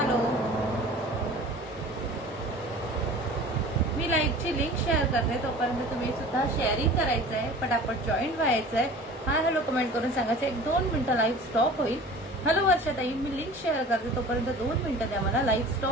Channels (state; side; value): normal; both; correlation 0.41